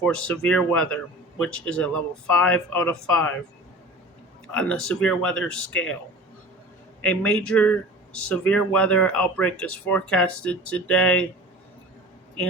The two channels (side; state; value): both; normal; correlation 0.39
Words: severe weather, which is a level 5 out of 5 on the severe weather scale. A major severe weather outbreak is forecasted today